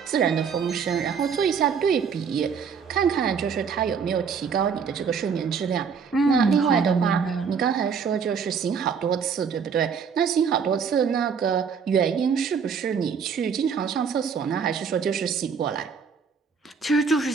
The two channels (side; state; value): left; quieter; 6.3 dB